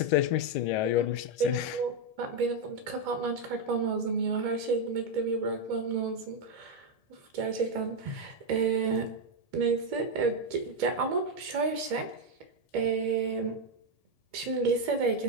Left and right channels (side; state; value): left; late; 1.8 ms